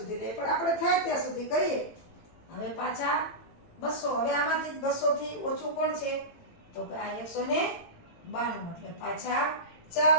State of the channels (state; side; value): late; right; 18 ms